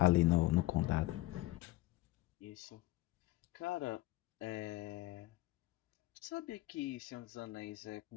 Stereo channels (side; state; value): right; quieter; 17.8 dB